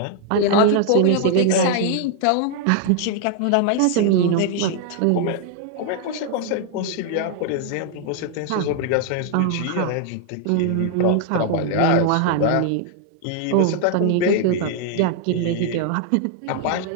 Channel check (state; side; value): different; both; correlation 0.00